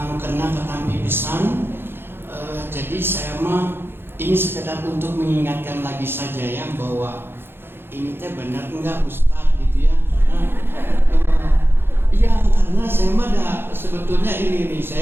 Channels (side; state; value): left; late; 0.11 ms